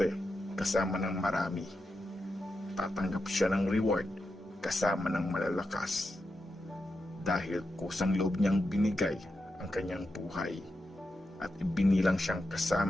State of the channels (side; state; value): both; normal; correlation 0.88